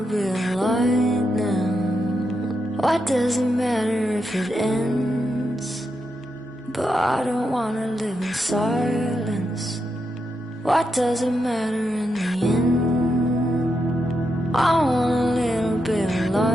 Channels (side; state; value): both; normal; correlation 0.84